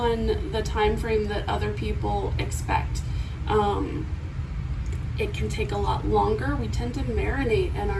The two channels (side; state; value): both; identical; correlation 1.00